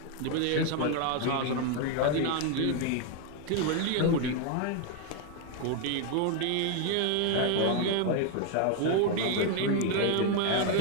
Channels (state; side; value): different; both; correlation 0.01